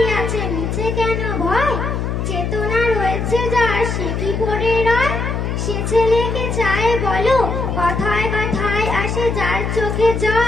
আছে নিচে কেন ভয়, চেতনা রয়েছে যার সে কি পড়ে রয়। সে ছেলেকে চায় বলো, কথায় কথায় আসে যার চোখে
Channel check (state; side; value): noise; left; hum, 2 dB below the sound